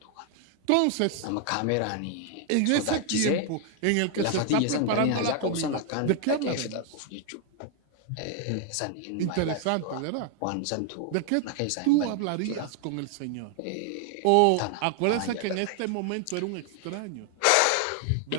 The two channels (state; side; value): different; both; correlation 0.00